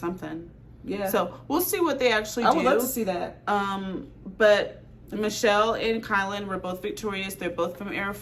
Yeah. So we'll see what they actually do. I would love to see that. But Michelle and Kylan were both victorious. They're both from Era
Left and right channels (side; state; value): both; identical; correlation 1.00